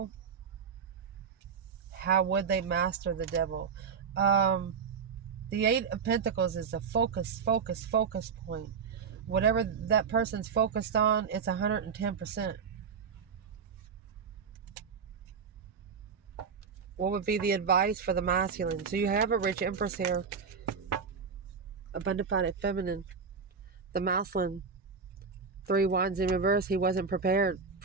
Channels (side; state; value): left; quieter; 5.9 dB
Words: how would they master the devil? The 8 of Pentacles is a focus point. Whatever that person's focused on, it's 110%. What would be the advice for the masculine? So you have a rich Empress here. Abundified feminine. The masculine. 3 wands in reverse. He wasn't prepared